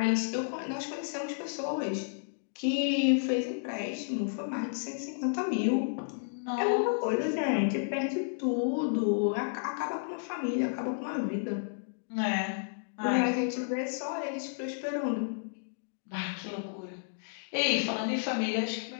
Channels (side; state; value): right; silent; digital silence